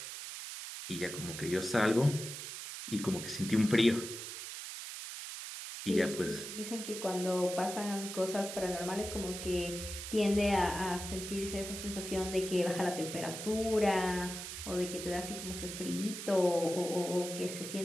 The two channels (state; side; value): noise; right; hiss, 8 dB below the sound